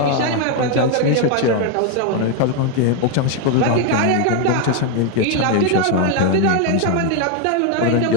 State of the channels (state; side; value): different; both; correlation 0.01